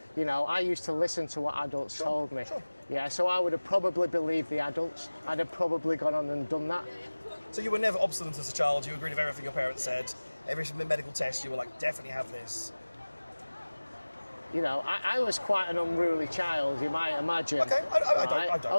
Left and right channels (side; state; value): both; inverted; correlation -1.00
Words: you know, I used to listen to what adults told me. Sure. Yeah, so I would have probably believed the adults. I'd have probably gone on and done that. So you were never obstinate as a child. You agreed with everything your parents said. Every medical test, you were like, definitely have this. You know, I was quite an unruly child, you might imagine. Okay, I